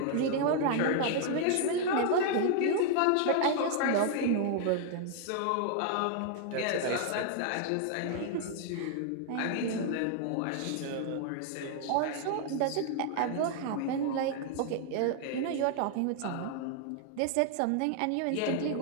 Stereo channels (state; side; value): different; both; correlation 0.00